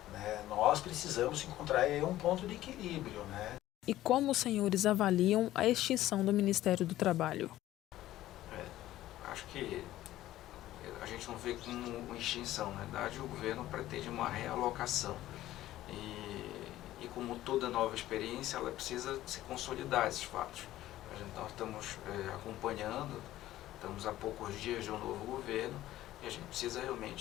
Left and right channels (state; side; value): quieter; right; 14.6 dB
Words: né? Nós precisamos encontrar aí um ponto de equilíbrio, né? E como os senhores avaliam a extinção do Ministério do Trabalho? Acho que a gente não vê como uma extinção. Na verdade, o governo pretende uma realocação. E como toda nova experiência, ela precisa se consolidar esses fatos. Nós estamos acompanhando, estamos há poucos dias de um novo governo, e a gente precisa